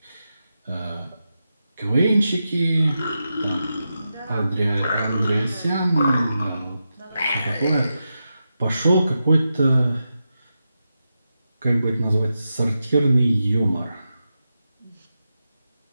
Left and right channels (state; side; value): inverted; both; correlation -0.89